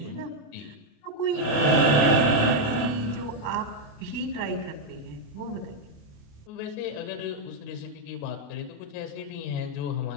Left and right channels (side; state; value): right; late; 28 ms